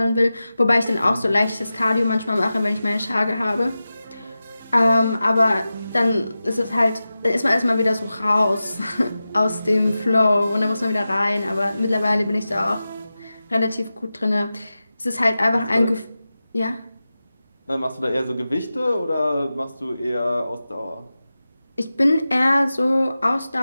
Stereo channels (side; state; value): both; inverted; correlation -0.94